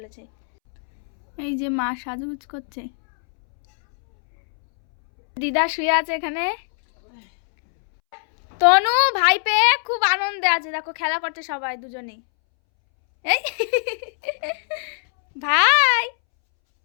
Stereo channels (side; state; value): right; silent; 65 dB below the other